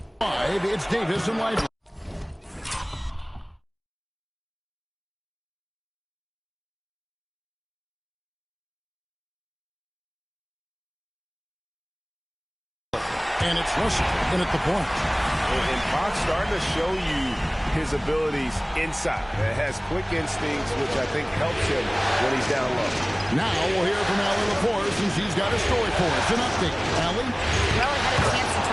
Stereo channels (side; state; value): both; identical; correlation 1.00